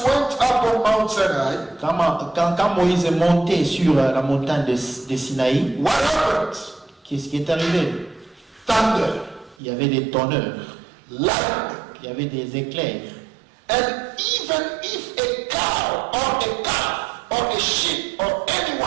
went up on Mount Sinai, Quand Moïse est monté sur la montagne de Sinaï, what happened? qu'est-ce qui est arrivé? Thunder, Il y avait des tonneurs, lightning. il y avait des éclairs. And even if a cow or a calf or a sheep or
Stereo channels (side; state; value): left; drops out; at 9.6 s